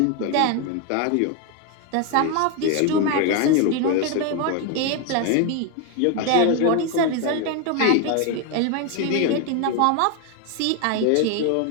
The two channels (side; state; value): both; different; correlation 0.01